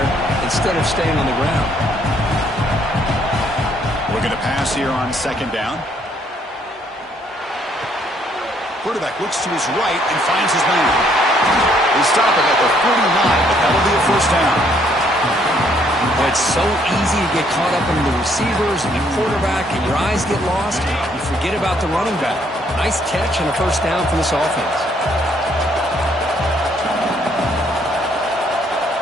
instead of staying on the ground. Looking to pass here on 2nd down. Quarterback looks to his right and finds his man. They stop it at the 49, but that'll be a first down. Well, it's so easy to get caught up in the receivers and the quarterback, and your eyes get lost. You forget about the running back. Nice catch and a first down for this offense.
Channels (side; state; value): both; normal; correlation 0.67